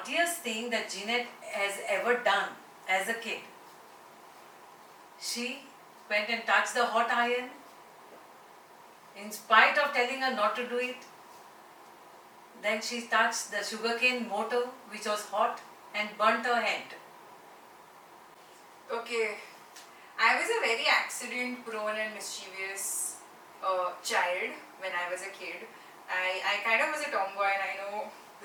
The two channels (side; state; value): both; identical; correlation 1.00